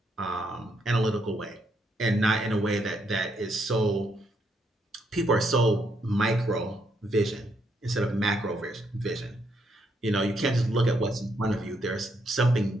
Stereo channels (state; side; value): normal; both; correlation 0.76